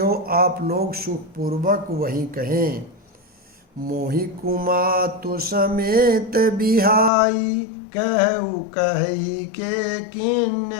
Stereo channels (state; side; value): drops out; right; at 7.1 s